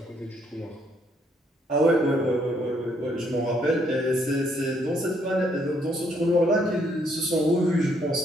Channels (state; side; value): normal; both; correlation 0.70